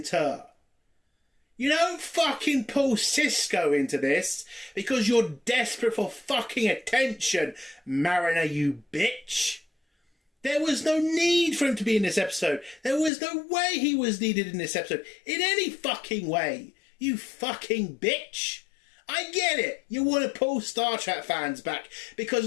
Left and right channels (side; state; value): right; drops out; at 13.1 s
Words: You don't fucking pull Cisco into this because you're desperate for fucking attention, Mariner, you bitch. There was no need for him to be in this episode. There was no way he was needed in this episode. In any fucking way. You fucking bitch. I get it. You want to pull Star Trek fans back because